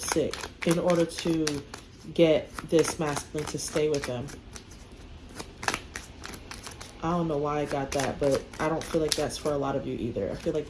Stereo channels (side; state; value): both; identical; correlation 1.00